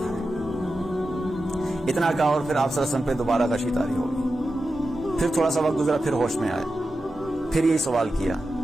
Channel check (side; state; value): both; normal; correlation 0.91